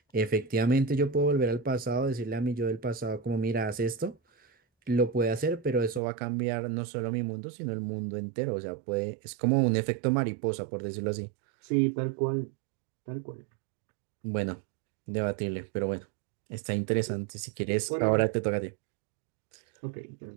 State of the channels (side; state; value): left; drops out; at 6.0 s